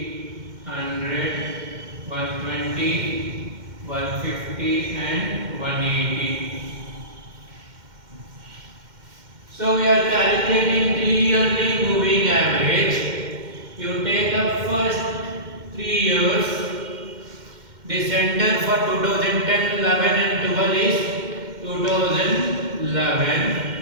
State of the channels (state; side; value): late; left; 2.1 ms